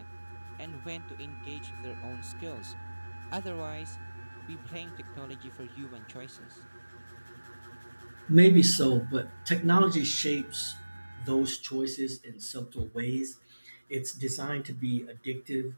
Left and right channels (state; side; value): inverted; both; correlation -1.00